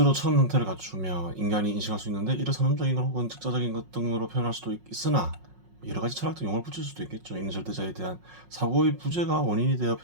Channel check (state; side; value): late; left; 5.5 ms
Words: 처음 형태를 갖추며 인간이 인식할 수 있는데 이를 선언적인 것 혹은 즉자적인 것 등으로 표현할 수도 있으나 여러 가지 철학적 용어를 붙일 수도 있겠죠. 있는 절대자에 대한 사고의 부재가 원인이 되어